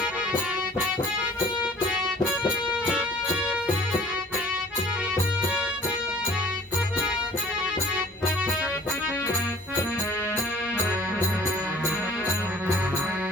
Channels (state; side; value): normal; both; correlation 0.49